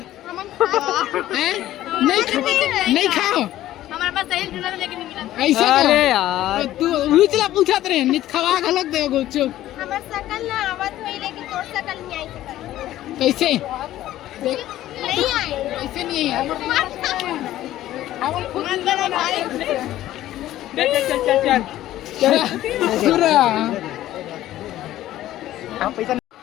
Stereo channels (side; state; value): right; quieter; 13.9 dB